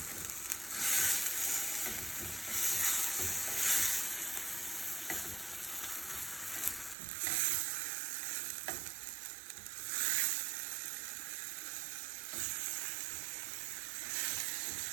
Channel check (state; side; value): drops out; left; at 7.0 s